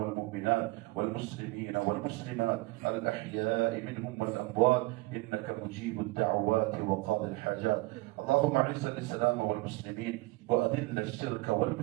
والمسلمين والمسلمات الأحياء منهم والأموات إنك مجيب الدعوات وقاضي الحاجات. اللهم أعز الإسلام والمسلمين وأذل الشرك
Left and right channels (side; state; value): left; quieter; 22.3 dB